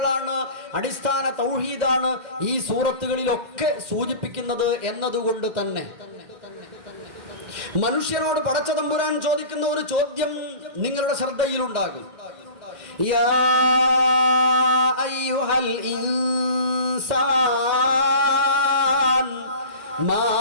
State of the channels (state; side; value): late; left; 2.1 ms